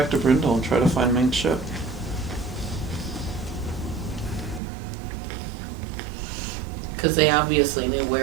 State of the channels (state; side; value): drops out; left; at 4.6 s